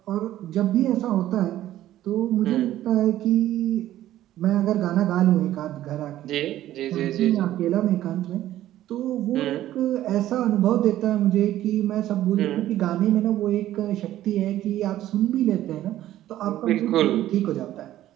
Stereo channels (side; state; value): left; quieter; 13.5 dB